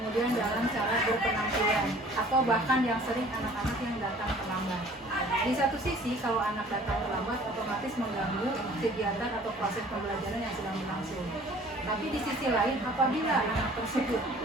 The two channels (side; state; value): both; normal; correlation 0.51